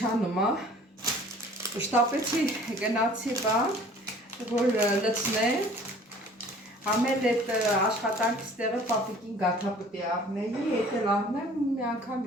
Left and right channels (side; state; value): both; normal; correlation 0.50